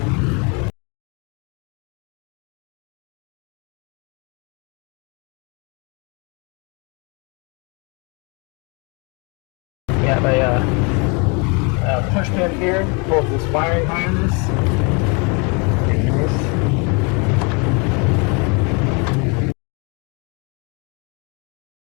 We have a push pin here, pulls this wiring harness.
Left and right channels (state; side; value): quieter; right; 32.1 dB